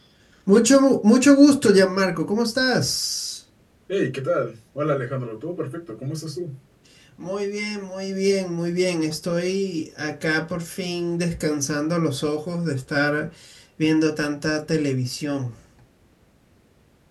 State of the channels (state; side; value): identical; both; correlation 1.00